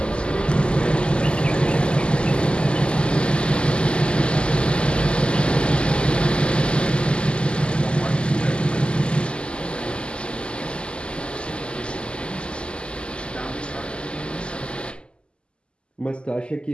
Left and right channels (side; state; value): right; late; 0.051 ms